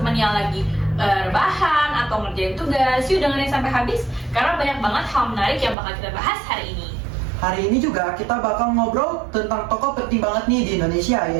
yang lagi rebahan atau ngerjain tugas, yuk dengerin sampai habis karena banyak banget hal menarik yang bakal kita bahas hari ini. Hari ini juga kita bakal ngobrol tentang tokoh penting banget nih di Indonesia,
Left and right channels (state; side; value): drops out; left; at 5.8 s